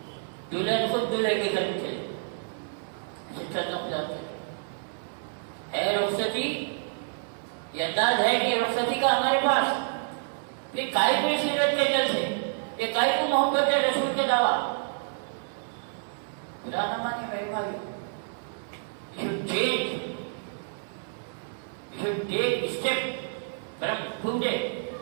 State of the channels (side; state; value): left; silent; digital silence